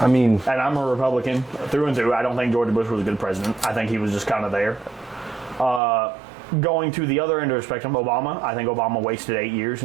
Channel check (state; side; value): drops out; left; at 5.8 s